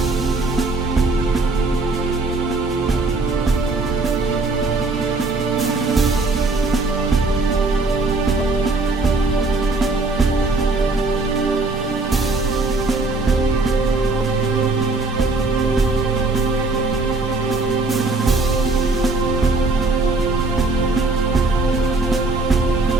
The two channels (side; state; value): left; quieter; 3.4 dB